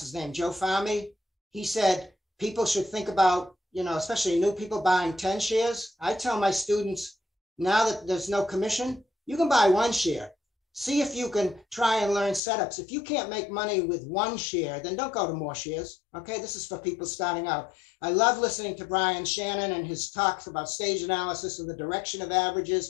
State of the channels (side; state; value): right; drops out; at 12.4 s